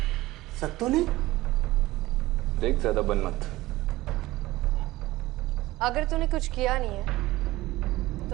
सत्तू ने? देख, ज्यादा बन मत। अगर तूने कुछ किया नहीं है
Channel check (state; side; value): quieter; left; 18.1 dB